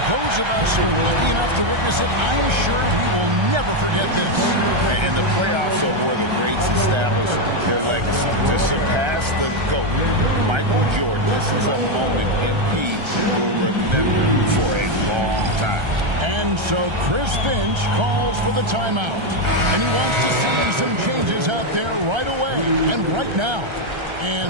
those of us who are lucky enough to witness it, I'm sure we will never forget this. And the playoffs are where the greats establish their legacy. To surpass the GOAT, Michael Jordan, this is a moment MP will remember for a long time. And so Chris Finch calls for the timeout. And he wants to see some changes out there right away and right now.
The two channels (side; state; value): left; late; 1.3 ms